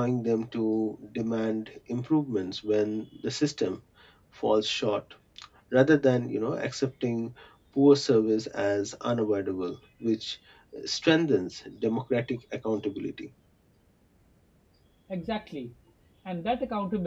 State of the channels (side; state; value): both; identical; correlation 1.00